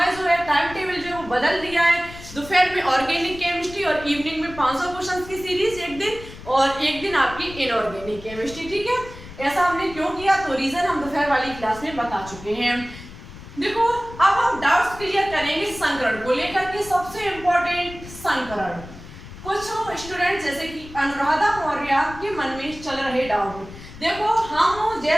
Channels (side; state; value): left; noise; rumble, 15 dB below the sound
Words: जो है टाइम टेबल जो है वो बदल दिया है, दोपहर में ऑर्गेनिक केमिस्ट्री और इवनिंग में 500 क्वेश्चंस की सीरीज एक दिन और एक दिन आपकी इनऑर्गेनिक केमिस्ट्री। ठीक है, ऐसा हमने क्यों किया तो रीजन हम दोपहर वाली क्लास में बता चुके हैं। देखो, अब हम डाउट्स क्लियर करेंगे संकरण को लेकर के। सबसे इंपॉर्टेंट संकरण, कुछ स्टूडेंट जैसे कि अनुराधा मौर्य के मन में चल रहे डाउट। देखो, हम